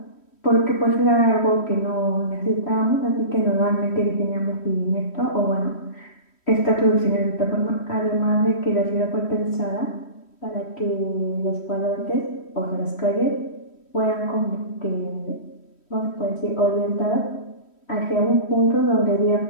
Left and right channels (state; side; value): late; right; 3.1 ms